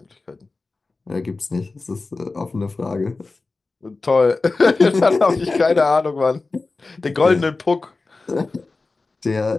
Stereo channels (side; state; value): right; quieter; 3.7 dB